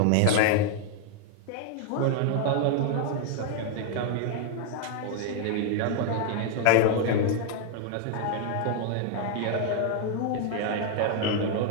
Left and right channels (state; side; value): different; both; correlation 0.00